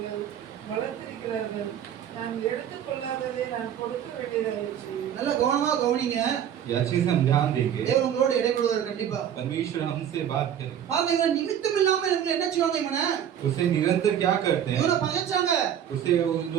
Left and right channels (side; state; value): left; quieter; 9.6 dB